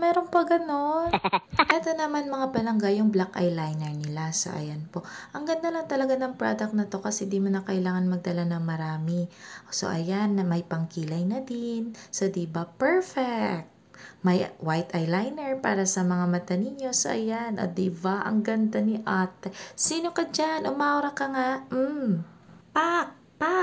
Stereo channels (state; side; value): identical; both; correlation 1.00